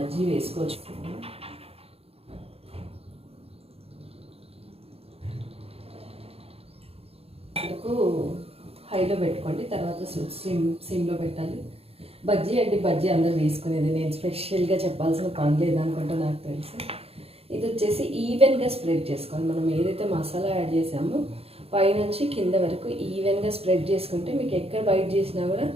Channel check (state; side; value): late; left; 0.29 ms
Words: వేసుకోవచ్చు. హైలో పెట్టుకోండి, తర్వాత సిమ్లో పెట్టాలి. బజ్జీ అంటే బజ్జీ అందరూ వేసుకునేది, నేను స్పెషల్గా చెప్పాల్సిన పని లేదనుకుంటా నాకు తెలుసు. ఇది వచ్చేసి ఈవెన్గా స్ప్రెడ్ చేసుకోవాలి. మనం ఏదైతే మసాలా యాడ్ చేసామో పైనుంచి కింద వరకు ఈవెన్గా స్ప్రెడ్ చేసుకుంటే మీకు ఎక్కడ బైట్ చేసినా కూడా